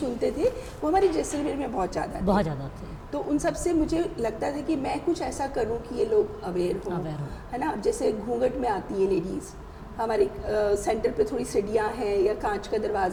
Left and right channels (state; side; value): identical; both; correlation 1.00